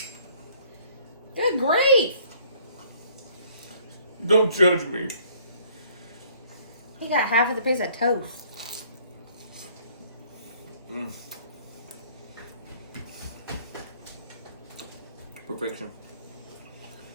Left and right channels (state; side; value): inverted; both; correlation -0.59